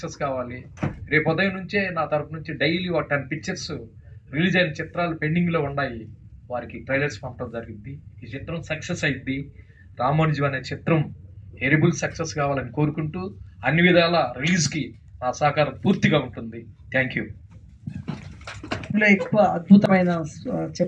కావాలి. రేపు ఉదయం నుంచే నా తరపు నుంచి డైలీ 10 పిక్చర్స్ రిలీజ్ అయిన చిత్రాలు పెండింగ్లో ఉన్నాయి, వారికి ట్రైలర్స్ పంపడం జరిగింది. ఈ చిత్రం సక్సెస్ అయింది. రామానుజం అనే చిత్రం హెరిబుల్ సక్సెస్ కావాలని కోరుకుంటూ అన్ని విధాల రిలీజ్కి నా సహకారం పూర్తిగా ఉంటుంది. Thank you. ఎక్కువ అద్భుతమైన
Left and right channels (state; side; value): identical; both; correlation 1.00